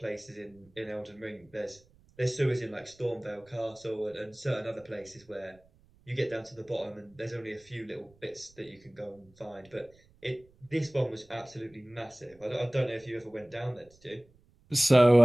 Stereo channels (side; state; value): right; noise; rumble, 30 dB below the sound